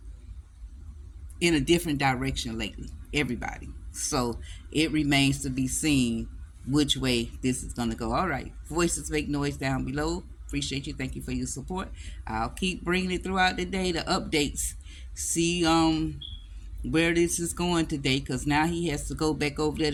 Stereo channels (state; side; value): identical; both; correlation 1.00